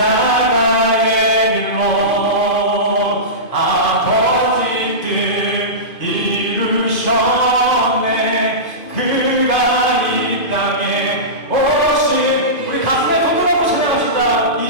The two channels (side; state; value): right; late; 2.5 ms